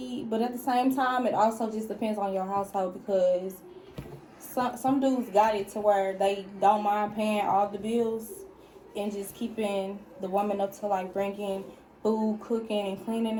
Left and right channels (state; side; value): identical; both; correlation 1.00